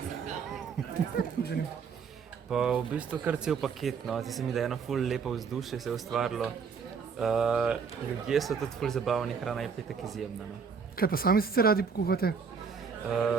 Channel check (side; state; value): left; quieter; 5.9 dB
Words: Pa v bistvu kar cel paket, no. Zdi se mi, da je eno ful lepo vzdušje se je ustvarilo. Ljudje so tudi ful zabavni, hrana je petek izjemna, no. Kaj pa sami sicer radi pokuhate?